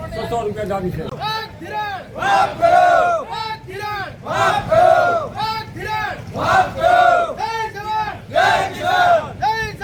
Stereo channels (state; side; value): identical; both; correlation 1.00